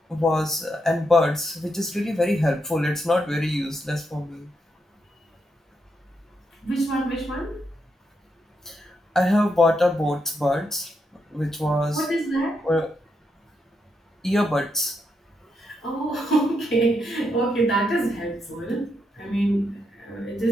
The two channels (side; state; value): both; normal; correlation 0.81